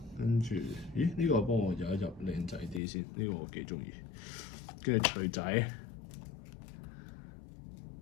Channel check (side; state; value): right; drops out; at 2.8 s